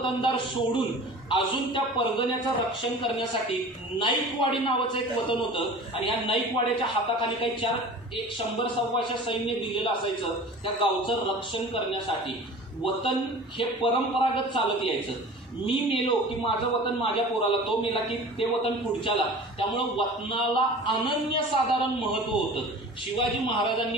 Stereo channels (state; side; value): normal; both; correlation 0.40